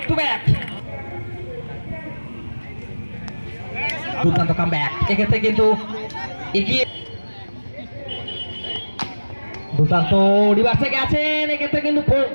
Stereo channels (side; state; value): both; inverted; correlation -1.00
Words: টু ব্যাক, দুর্দান্ত কামব্যাক, এক্ষেত্রে কিন্তু এগিয়ে দুর্দান্ত রিভার্সে গেছেন, এক্ষেত্রে কিন্তু